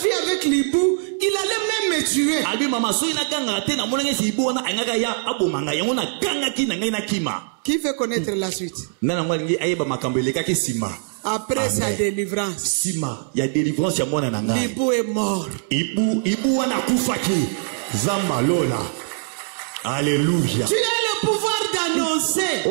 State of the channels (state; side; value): silent; left; digital silence